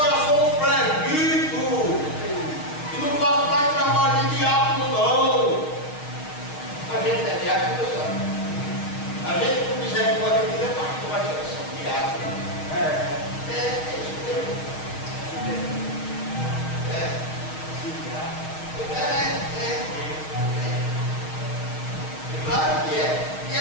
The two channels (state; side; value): late; right; 6.4 ms